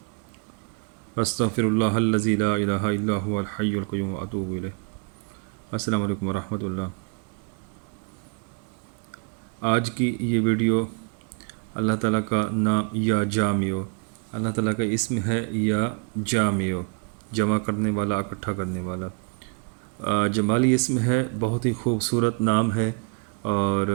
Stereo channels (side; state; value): left; quieter; 36.6 dB